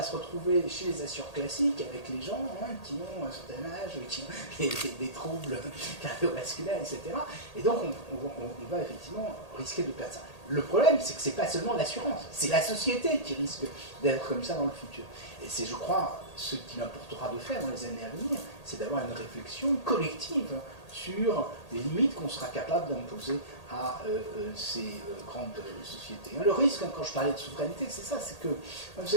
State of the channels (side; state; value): right; late; 1.8 ms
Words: se retrouver chez les assureurs classiques avec les gens qui ont un certain âge, qui ont des troubles cardiovasculaires, etc. Et donc, on va effectivement risquer de perdre ça. Le problème, c'est que ce n'est pas seulement l'assurance, c'est la société qui risque d'être comme ça dans le futur. Et c'est, je crois, ce qu'il importera de faire dans les années à venir, c'est d'avoir une réflexion collective sur les limites qu'on sera capable d'imposer à ces grandes sociétés. Le risque, quand je parlais de souveraineté, c'est ça, c'est que, vous